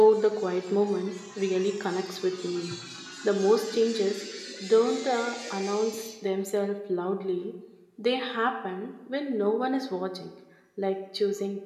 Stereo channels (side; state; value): both; identical; correlation 1.00